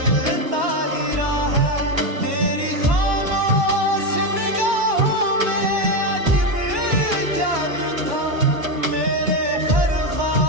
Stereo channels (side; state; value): left; late; 1.1 ms